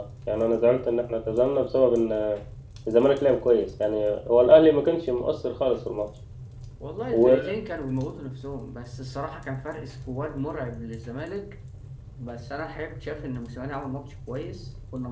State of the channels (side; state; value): both; identical; correlation 1.00